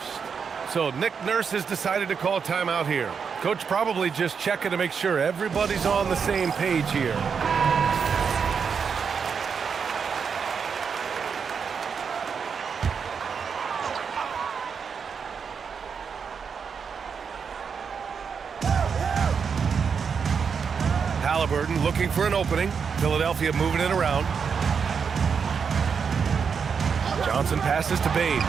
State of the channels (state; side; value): quieter; left; 6.2 dB